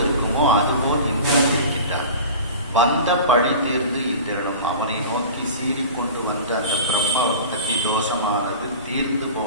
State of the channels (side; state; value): both; inverted; correlation -0.36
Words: இருக்குமோ அதுபோல் இந்திரன் இருக்கின்றார். வந்த பழி தீர்ந்து இந்திரனும் அவனை நோக்கி சீறிக்கொண்டு வந்த அந்த பிரம்ம பக்தி தோஷமானது தீர்ந்து